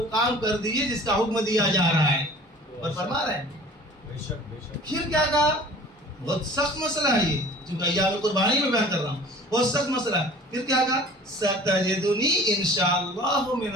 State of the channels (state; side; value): normal; both; correlation 0.46